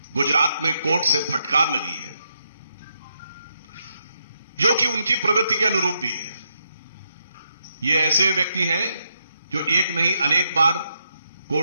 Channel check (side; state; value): both; inverted; correlation -0.80